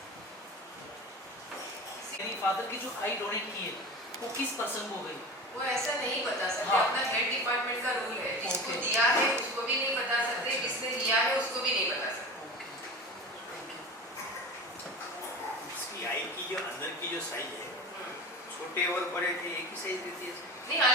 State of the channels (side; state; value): both; normal; correlation 0.32